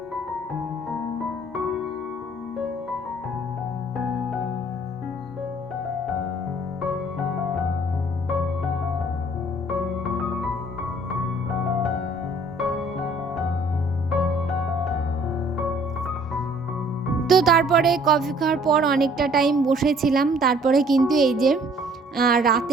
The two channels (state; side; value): normal; both; correlation 0.57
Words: তো তারপরে কফি খাওয়ার পর অনেকটা টাইম বসেছিলাম, তারপরে কিন্তু এই যে